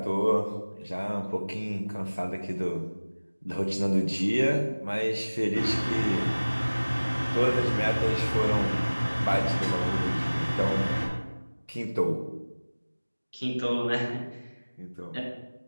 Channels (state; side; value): inverted; both; correlation -1.00